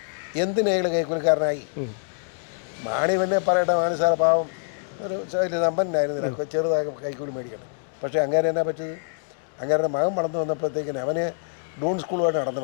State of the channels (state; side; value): silent; right; digital silence